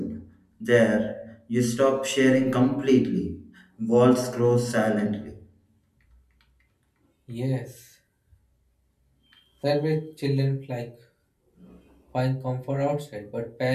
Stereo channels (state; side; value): identical; both; correlation 1.00